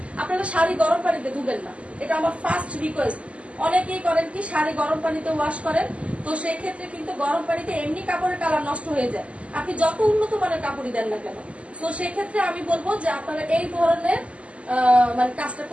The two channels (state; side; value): late; left; 0.061 ms